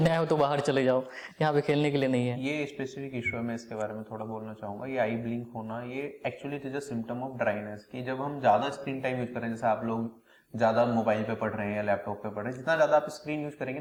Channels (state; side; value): identical; both; correlation 1.00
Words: आए हो तो बाहर चले जाओ, यहाँ पे खेलने के लिए नहीं है। ये स्पेसिफिक इशू है, मैं इसके बारे में थोड़ा बोलना चाहूंगा। ये आई ब्लिंक होना, ये actually it is a symptom of dryness, कि जब हम ज्यादा स्क्रीन टाइम यूज करें, जैसे आप लोग ज्यादा मोबाइल पे पढ़ रहे हैं या लैपटॉप पे पढ़ रहे हैं, जितना ज्यादा आप स्क्रीन यूज करेंगे